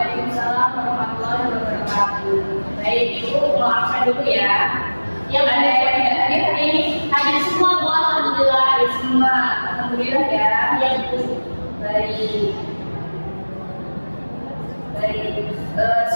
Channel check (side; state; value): both; inverted; correlation -1.00